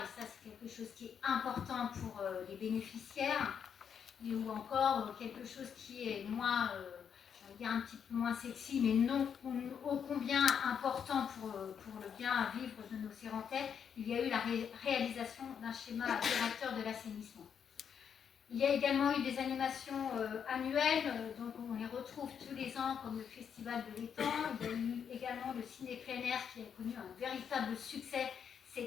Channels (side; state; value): right; quieter; 7.6 dB